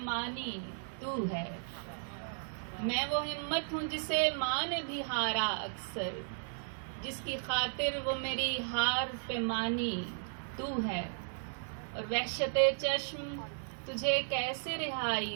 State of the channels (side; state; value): left; silent; 54 dB below the other